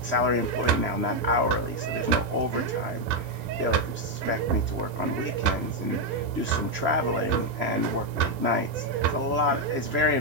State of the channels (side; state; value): left; late; 3.0 ms